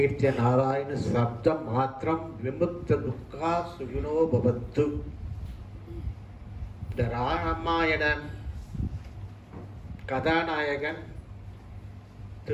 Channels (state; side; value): identical; both; correlation 1.00